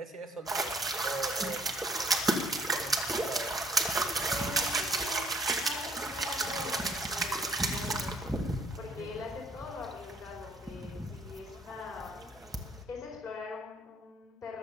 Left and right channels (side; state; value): both; normal; correlation 0.62